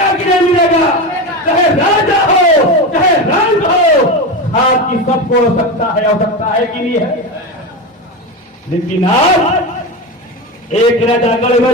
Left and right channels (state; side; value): normal; both; correlation 0.20